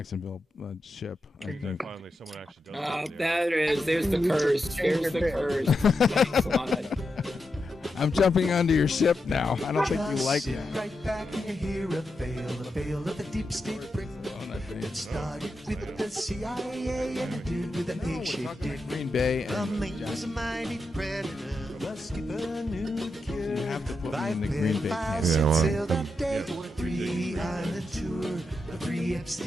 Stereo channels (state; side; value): normal; both; correlation 0.86